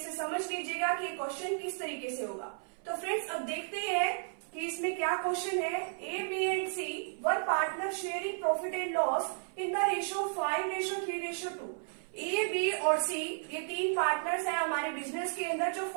समझ लीजिएगा कि क्वेश्चन किस तरीके से होगा। तो फ्रेंड्स, अब देखते हैं कि इसमें क्या क्वेश्चन है। A, B and C were partner sharing profit and loss in the ratio 5:3:2। A, B और सी ये तीन पार्टनर्स हैं हमारे बिजनेस के अंदर जो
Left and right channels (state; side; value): silent; left; 55 dB below the other